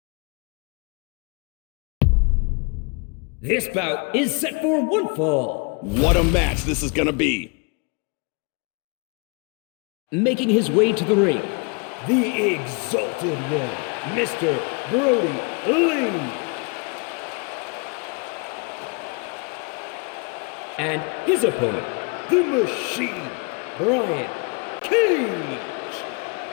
This bout is set for one fall. What a match this is going to be. Making his way to the ring, the Exalted One, Mr. Brodie Lee. And his opponent, the Machine, Brian Cage.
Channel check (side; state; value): right; quieter; 33.8 dB